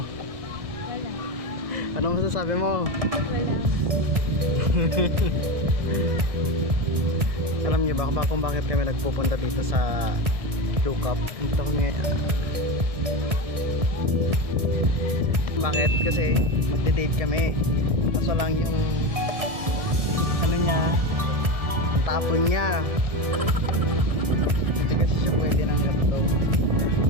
Wala. Ano masasabi mo? Wala. Alam niyo ba kung bakit kami nagpupunta dito sa Lukap? Dito kami. Bakit? Kasi magde-date kami. Kaso lang yung ano niya, tapon niya. Hindi kasi siya pwede ng ganito.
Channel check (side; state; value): left; late; 1.6 ms